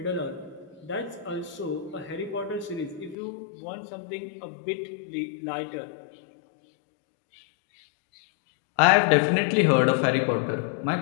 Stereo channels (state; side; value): drops out; right; at 3.2 s